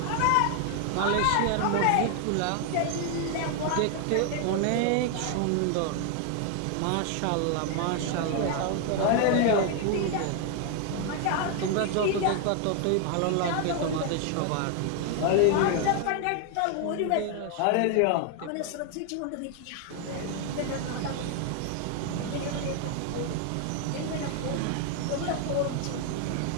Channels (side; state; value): both; different; correlation 0.00